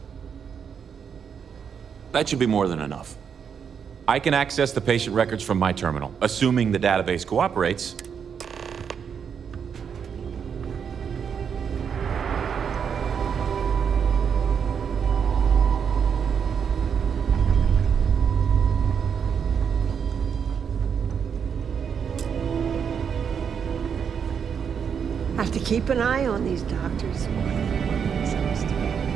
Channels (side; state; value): left; quieter; 7.1 dB